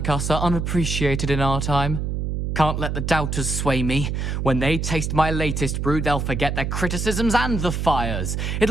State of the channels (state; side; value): noise; right; hum, 1 dB below the sound